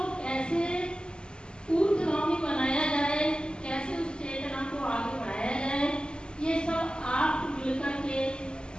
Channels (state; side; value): late; right; 0.049 ms